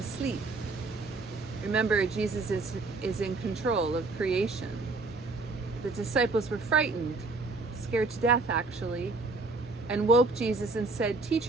Remember, Jesus is in control of creation. The disciples were frightened, scared to death actually, and woke Jesus and said,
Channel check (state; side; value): quieter; left; 3.6 dB